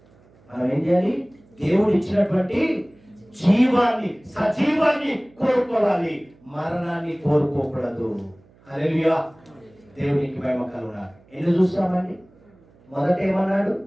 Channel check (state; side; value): noise; right; hum, 29 dB below the sound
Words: మనం ఏం చేయాలి? దేవుడు ఇచ్చినటువంటి జీవాన్ని, సజీవాన్ని కోరుకోవాలి, మరణాన్ని కోరుకోకూడదు. హల్లెలూయా. దేవునికి మహిమ కలుగును. ఎన్ని చూస్తామండి? మొదట ఏమన్నాడు?